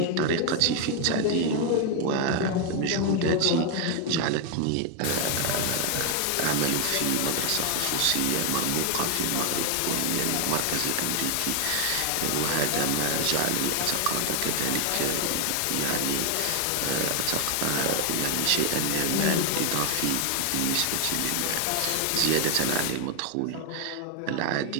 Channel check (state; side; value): different; both; correlation 0.00